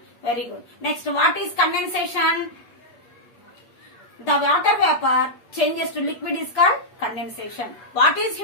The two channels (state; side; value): late; right; 8.3 ms